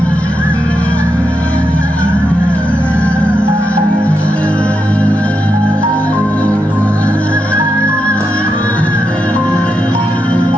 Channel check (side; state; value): both; normal; correlation 0.84